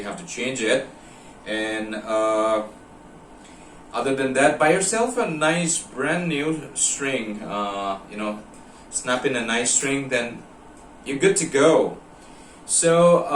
have to change it. And other than that, buy yourself a nice brand new string, you know, snap in a nice string, then you're good to go.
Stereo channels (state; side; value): identical; both; correlation 1.00